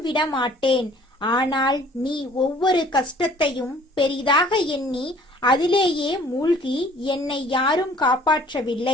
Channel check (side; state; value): both; normal; correlation 0.54